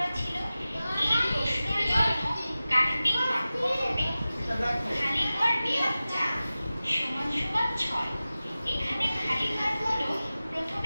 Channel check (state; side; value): inverted; both; correlation -0.96